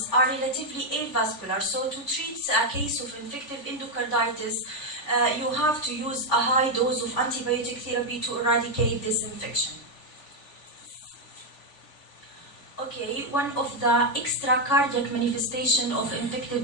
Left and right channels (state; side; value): late; right; 3.4 ms